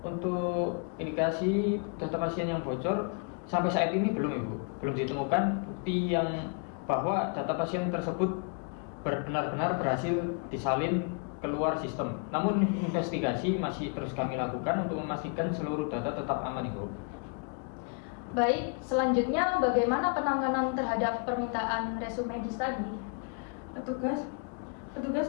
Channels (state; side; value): quieter; right; 39.1 dB